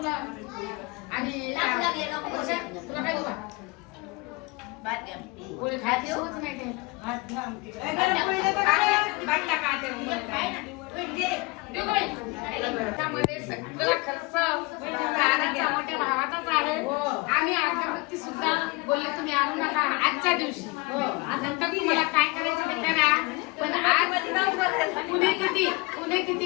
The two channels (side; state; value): right; quieter; 26.0 dB